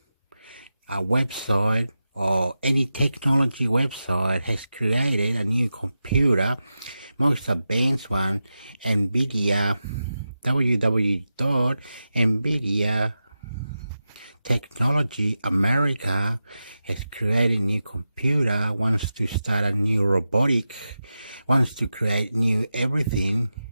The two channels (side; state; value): both; inverted; correlation -0.91